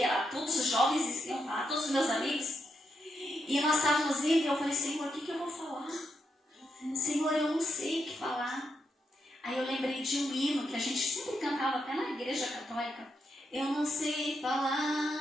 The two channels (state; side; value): normal; both; correlation 0.82